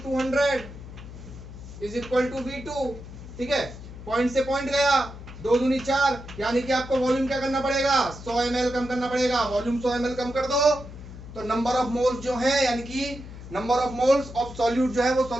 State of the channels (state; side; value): noise; left; hum, 13 dB below the sound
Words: 200 is equal to v2, ठीक है, पॉइंट से पॉइंट गया, 2 दूनी 4, यानी कि आपको वॉल्यूम क्या करना पड़ेगा, 100 ml कम करना पड़ेगा। वॉल्यूम 100 ml कम कर दो तो नंबर ऑफ मोल्स जो है, यानी कि number of moles of solute जो है वो